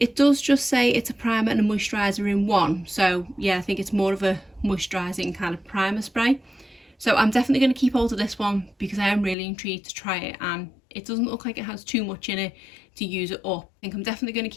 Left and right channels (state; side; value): drops out; right; at 9.3 s